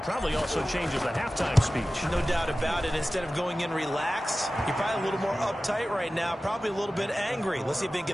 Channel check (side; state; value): both; normal; correlation 0.95